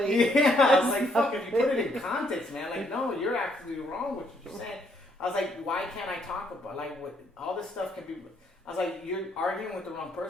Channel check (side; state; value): both; normal; correlation 0.70